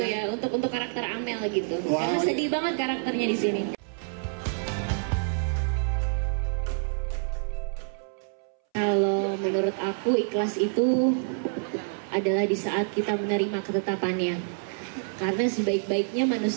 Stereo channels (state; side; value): silent; left; 60 dB below the other